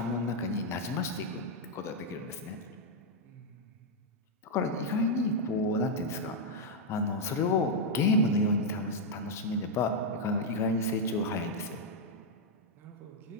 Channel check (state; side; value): normal; both; correlation -0.02